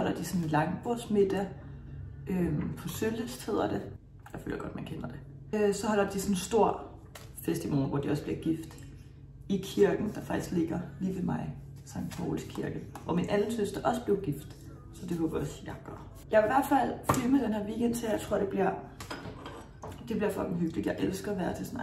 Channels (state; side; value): identical; both; correlation 1.00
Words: de sådan en langbordsmiddag på Sølyst hedder det. Jeg føler godt, man kender det. Så holder de sådan en stor fest i morgen, hvor de også bliver gift i kirken, der faktisk ligger lige ved mig, Sankt Pauls Kirke, hvor min anden søster også blev gift. Så det håber jeg også, jeg gør. Jeg vil i hvert fald filme den her weekend til, jeg tror, det bliver fucking hyggeligt. Jeg elsker at være til sådan